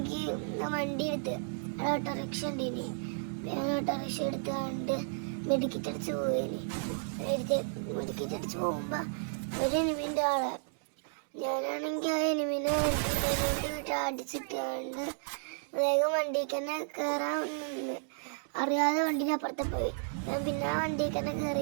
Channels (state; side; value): silent; left; digital silence